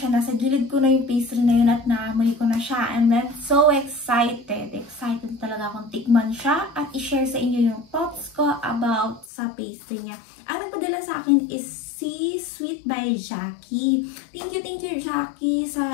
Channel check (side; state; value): right; drops out; at 9.2 s